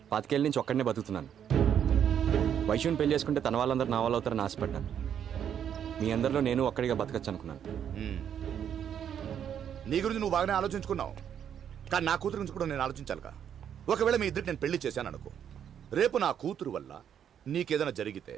25 ఏళ్ళ నుంచి ఒక్కడనే బతుకుతున్నాను. వైషుని పెళ్లి చేసుకుంటే తన వాళ్ళందరూ నా వాళ్ళు అవుతారని ఆశపడ్డాను. మీ అందరిలో నేను ఒక్కడిగా బతకచ్చు అనుకున్నాను. నీ గురించి నువ్వు బాగానే ఆలోచించుకున్నావు, కానీ నా కూతురు గురించి కూడా నేను ఆలోచించాలిగా. ఒకవేళ మీ ఇద్దరికి నేను పెళ్లి చేశాను అనుకో, రేపు నా కూతురు వల్ల నీకేదైనా జరిగితే,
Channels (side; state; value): left; quieter; 9.0 dB